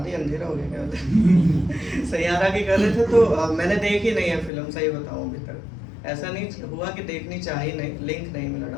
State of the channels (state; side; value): drops out; right; at 4.5 s